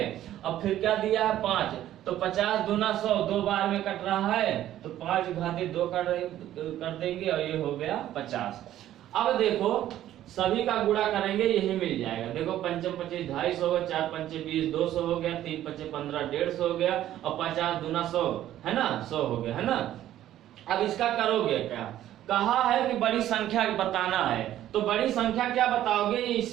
अब फिर क्या दिया है 5, तो 50 दूना 100, 2 बार में कट रहा है तो 5 घाते 2 कर देंगे और ये हो गया 50। अब देखो सभी का गुणा करेंगे यही मिल जाएगा। देखो 5 25 250 हो गया, 4 5 20 200 हो गया, 3 5 15 150 हो गया और 50 दूना 100 है ना, 100 हो गया है ना। अब इसका करोगे क्या, कहा है कि बड़ी संख्या बताना है, तो बड़ी संख्या क्या बताओगे,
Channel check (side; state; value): left; quieter; 12.7 dB